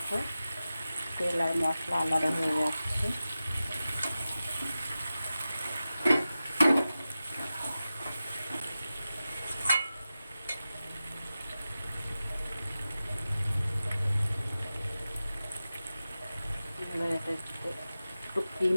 তেল আর মশলা আলাদা হয়ে যাচ্ছে। এবার এটা একটু ক্রিম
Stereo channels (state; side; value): inverted; both; correlation -0.94